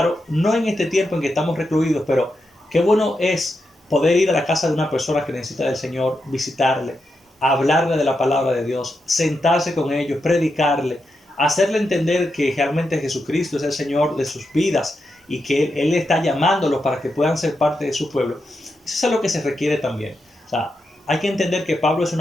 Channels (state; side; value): normal; both; correlation 0.86